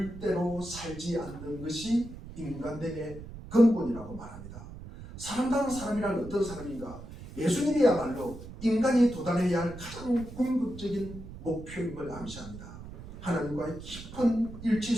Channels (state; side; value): noise; right; rumble, 13 dB below the sound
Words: 대로 살지 않는 것이 인간됨의 근본이라고 말합니다. 사람다운 사람이란 어떤 사람인가? 예수님이야말로 인간이 도달해야 할 가장 궁극적인 목표임을 암시합니다. 하나님과의 깊은 일치